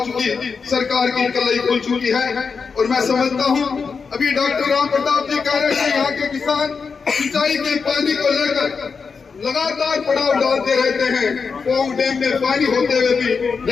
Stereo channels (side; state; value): right; quieter; 5.3 dB